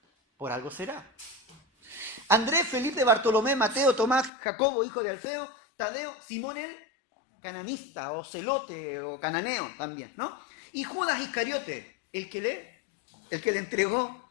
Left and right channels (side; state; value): right; drops out; at 4.3 s